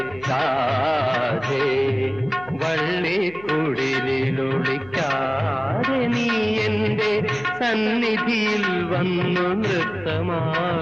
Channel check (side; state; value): left; noise; hum, 22 dB below the sound